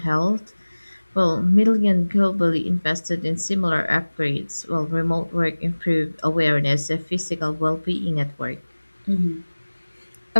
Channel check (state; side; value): inverted; both; correlation -1.00